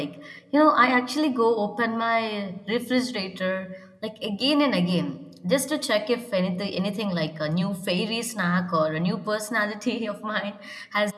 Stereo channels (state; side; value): identical; both; correlation 1.00